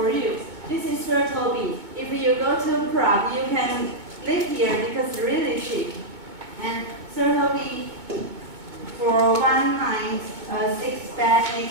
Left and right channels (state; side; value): late; left; 2.2 ms